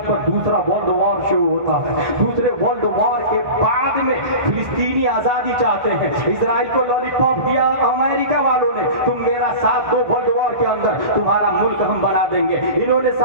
پر دوسرا ورلڈ وار شروع ہوتا ہے. دوسرے ورلڈ وار کے بعد میں فلسطینی آزادی چاہتے ہیں. اسرائیل کو لالی پاپ دیا امریکہ والوں نے، تم میرا ساتھ دو ورلڈ وار کے اندر تمہارا ملک ہم بنا دیں گے. انہوں نے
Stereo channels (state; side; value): late; left; 1.3 ms